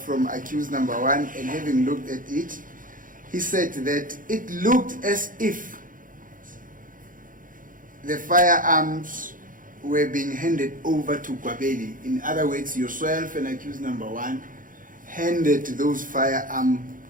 accused number 1, and having looked at it, he said that it looked as if the firearms were being handed over to Gwabeni. In other words, yourself and accused number 1 handed those firearms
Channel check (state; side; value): late; left; 0.39 ms